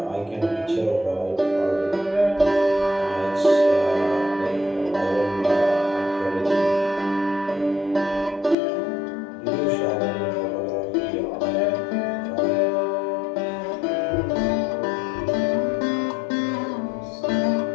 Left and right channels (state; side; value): drops out; right; at 8.6 s